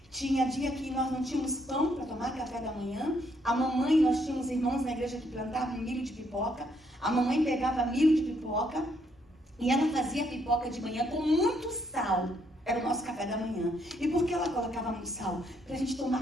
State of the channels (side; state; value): both; normal; correlation 0.72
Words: Tinha dia que nós não tínhamos pão para tomar café da manhã. A mamãe, nós tínhamos irmãos na igreja que plantavam milho de pipoca. A mamãe pegava milho de pipoca e ela fazia pipoca de manhã com muito sal. Era o nosso café da manhã. E por que ela colocava muito sal? Para a gente